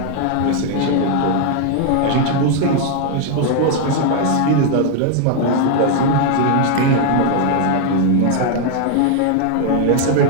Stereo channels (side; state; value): both; different; correlation 0.00